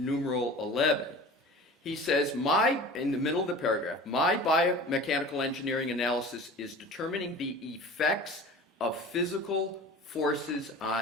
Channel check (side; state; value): both; normal; correlation 0.39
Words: 11, he says, in the middle of the paragraph, my biomechanical engineering analysis is determining the effects of physical forces